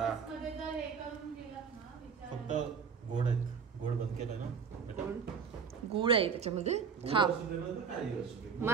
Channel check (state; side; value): quieter; left; 6.3 dB